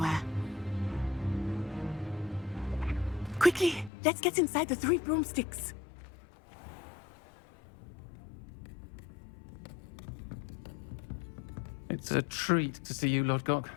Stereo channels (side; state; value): right; drops out; at 3.9 s